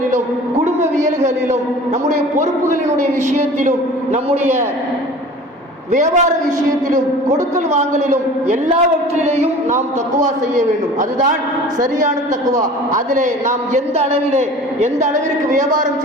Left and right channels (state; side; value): normal; both; correlation 0.42